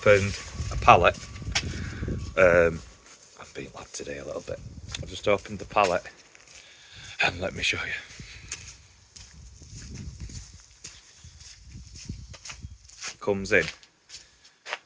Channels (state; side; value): identical; both; correlation 1.00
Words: a pallet. I'm being lad today a little bit. I've just opened the pallet and let me show you. Comes in,